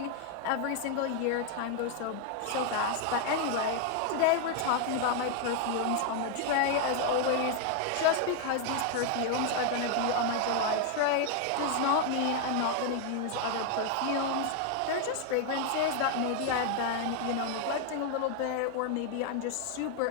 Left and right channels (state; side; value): different; both; correlation 0.00